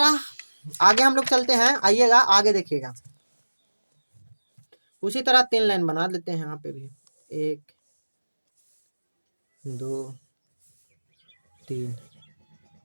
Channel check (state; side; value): inverted; both; correlation -1.00